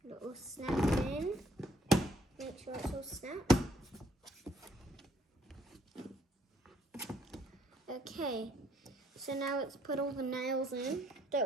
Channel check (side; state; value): both; normal; correlation 0.67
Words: little snap it in. Make sure it's all snapped. Okay, so now let's put all the nails in.